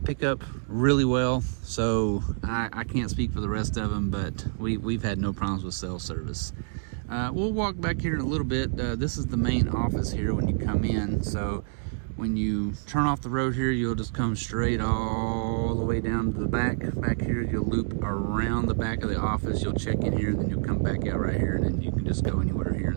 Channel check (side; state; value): left; silent; digital silence